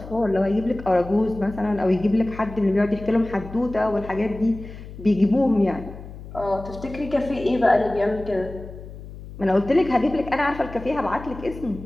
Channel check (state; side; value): noise; left; hum, 14 dB below the sound